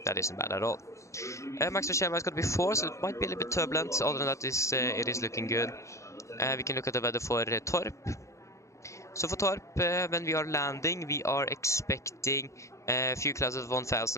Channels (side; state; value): right; late; 0.15 ms